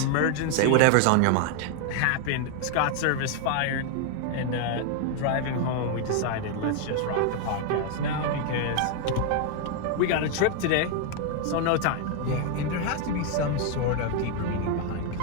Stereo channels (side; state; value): both; different; correlation 0.00